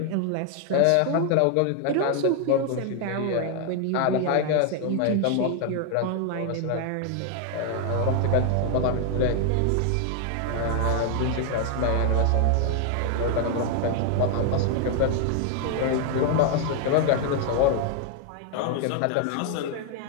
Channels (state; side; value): different; both; correlation 0.00